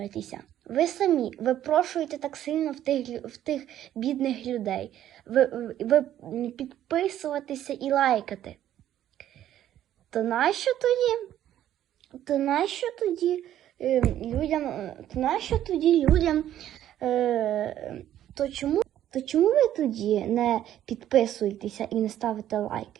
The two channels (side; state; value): left; quieter; 11.8 dB